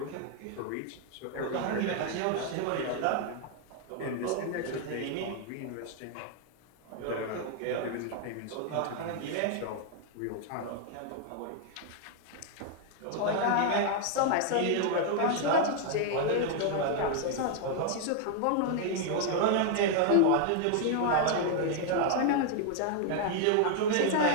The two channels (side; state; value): both; different; correlation 0.00